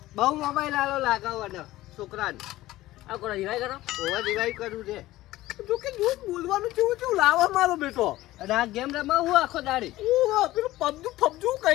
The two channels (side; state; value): right; quieter; 16.5 dB